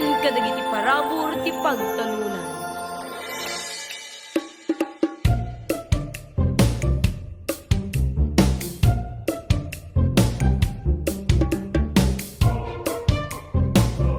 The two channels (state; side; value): identical; both; correlation 1.00